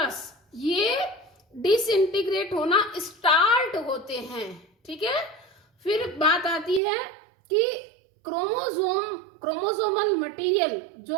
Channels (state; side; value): drops out; left; at 6.8 s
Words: ये डिसइंटीग्रेट होना स्टार्ट होते हैं। ठीक है, फिर बात आती है कि क्रोमोसोमल मटेरियल,